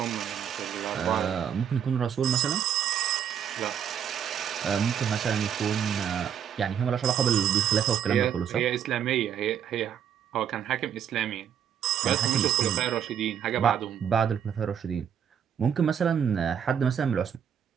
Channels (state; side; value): quieter; left; 8.6 dB